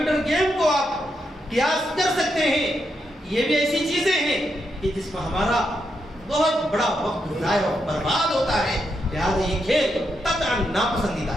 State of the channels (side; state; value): both; normal; correlation 0.82